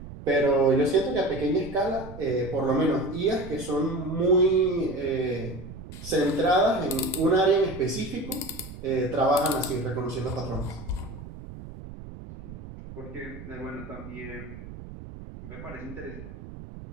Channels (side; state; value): right; noise; rumble, 13 dB below the sound